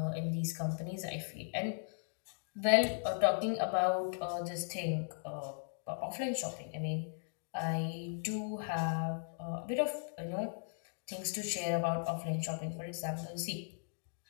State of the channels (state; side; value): silent; right; digital silence